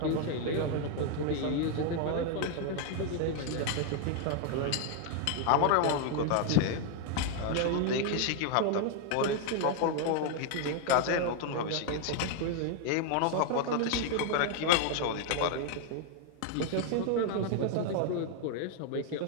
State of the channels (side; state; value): both; different; correlation 0.00